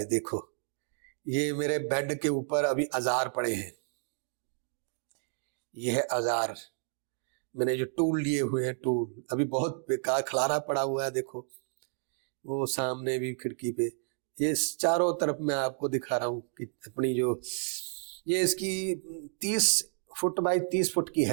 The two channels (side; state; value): left; silent; 57 dB below the other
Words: देखो ये मेरे बेड के ऊपर अभी औजार पड़े हैं, ये है औजार, मैंने जो टूल लिए हुए हैं, टूल अभी बहुत बेकार खलारा पड़ा हुआ है, देखो वो सामने भी खिड़की पे, ये चारों तरफ मैं आपको दिखा रहा हूँ कि अपनी जो ये इसकी 30 फुट बाई 30 फुट की